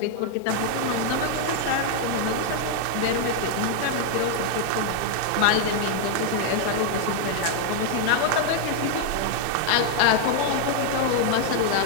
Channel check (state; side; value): different; both; correlation 0.00